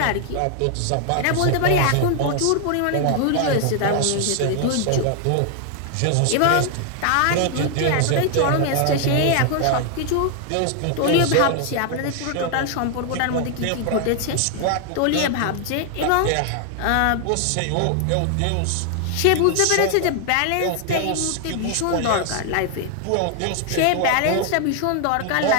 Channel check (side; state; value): both; different; correlation 0.00